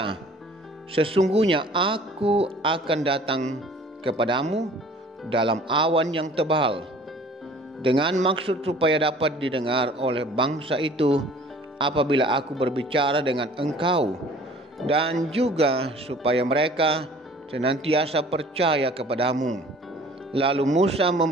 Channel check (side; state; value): both; normal; correlation 0.50